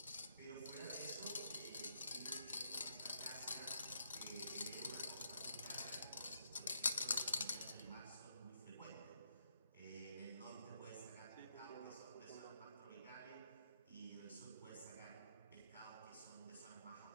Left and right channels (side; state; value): both; inverted; correlation -0.74